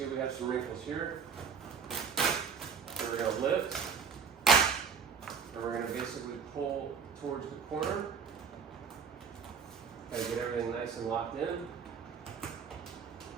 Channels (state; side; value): quieter; left; 6.5 dB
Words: we have some wrinkles here. So we're going to lift, and we're going to basically pull towards the corner. Kind of get everything nice and locked in. And